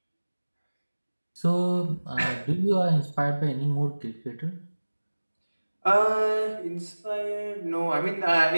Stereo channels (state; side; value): inverted; both; correlation -1.00